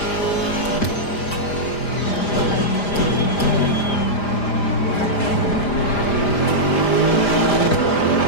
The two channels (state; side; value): late; right; 5.0 ms